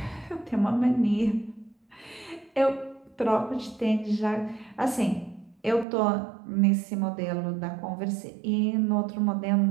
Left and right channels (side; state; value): left; drops out; at 5.9 s